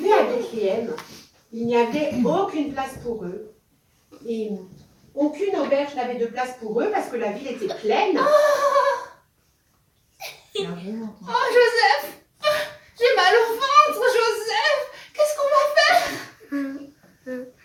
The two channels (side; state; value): both; identical; correlation 1.00